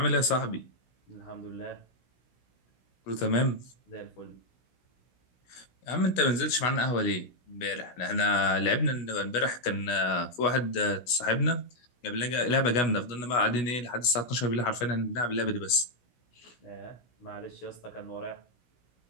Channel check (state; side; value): late; right; 16 ms